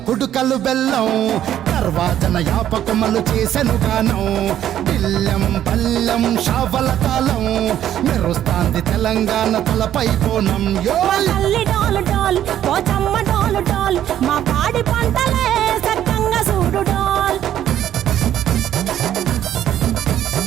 కుడుకలు బెల్లం, తర్వాతన యాపకమలు చేసెను గానం, తిల్లెం పల్లెం షావల తాళం, మెరుస్తాంది తెలంగాణ తలపై కోణం. మా పాడి పంటలే సక్కంగా చూడు డాల్.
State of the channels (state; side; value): quieter; left; 11.2 dB